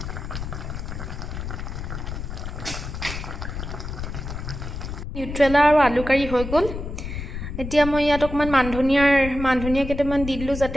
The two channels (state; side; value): noise; left; rumble, 7 dB below the sound